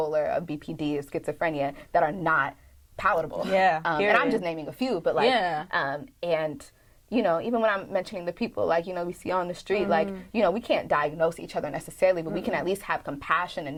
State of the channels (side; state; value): both; identical; correlation 1.00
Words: of BPD, of schizophrenia that are not palatable. And I'm just naming a few, but like, and even when I'm mentioning the people, like, we see on the street, like, we can't diagnose each other necessarily, but we can at least have compassion